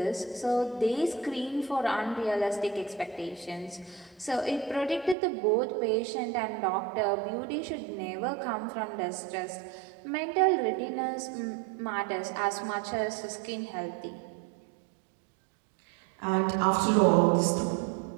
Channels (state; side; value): drops out; left; at 5.2 s